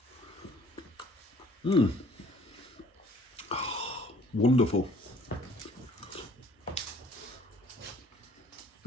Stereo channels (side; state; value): both; normal; correlation 0.56